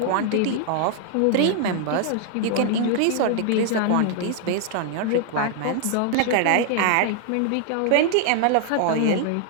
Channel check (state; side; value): different; both; correlation 0.00